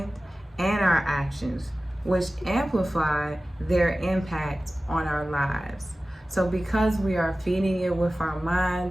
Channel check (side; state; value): both; normal; correlation 0.96